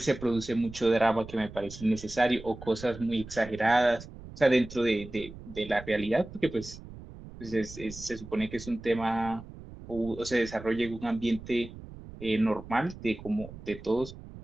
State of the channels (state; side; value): noise; right; rumble, 15 dB below the sound